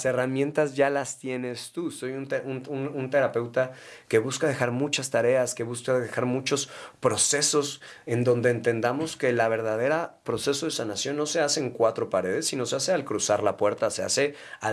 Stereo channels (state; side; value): identical; both; correlation 1.00